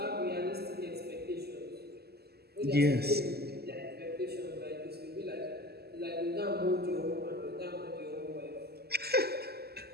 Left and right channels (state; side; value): late; left; 0.46 ms